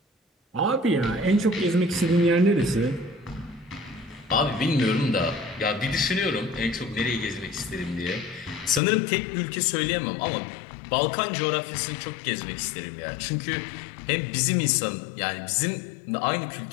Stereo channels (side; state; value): right; drops out; at 8.8 s